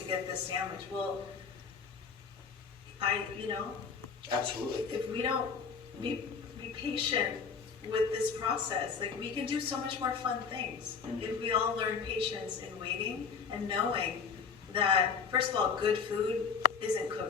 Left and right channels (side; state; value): right; quieter; 5.9 dB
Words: to get this sandwich? Well, Absolutely. if we don't be patient with this process, we can do so much more fun things. If we all learn patience in waiting and knowing that, first of all, good food isn't